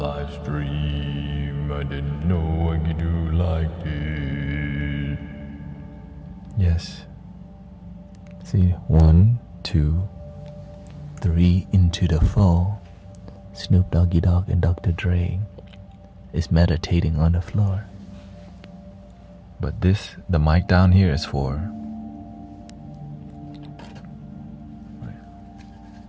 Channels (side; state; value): both; identical; correlation 1.00